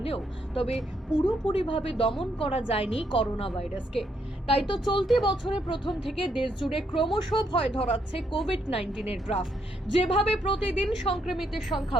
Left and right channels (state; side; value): normal; both; correlation 0.75